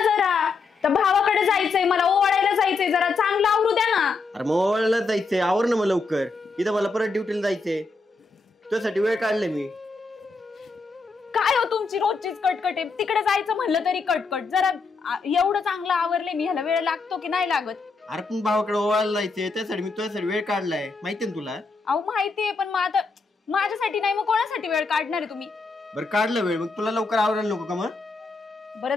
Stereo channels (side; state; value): right; quieter; 4.1 dB